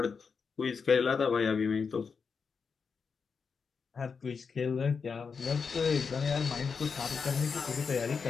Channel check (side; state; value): right; quieter; 5.6 dB